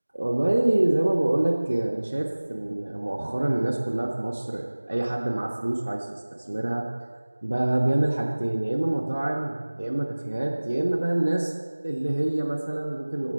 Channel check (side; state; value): both; inverted; correlation -1.00